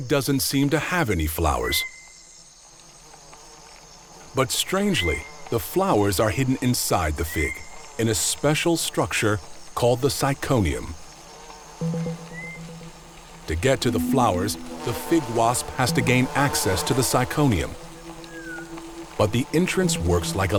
doesn't seem to have any flowers. But strangely, the flowers are hidden inside the fig, in a special structure called the syconium. To get to the flowers, the fig wasp has to gain access to the syconium. But the entrance works like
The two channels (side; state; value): both; identical; correlation 1.00